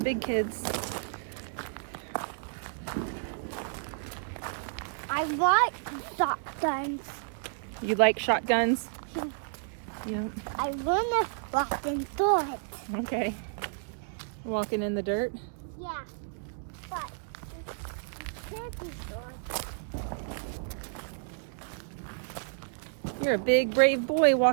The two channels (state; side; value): silent; left; digital silence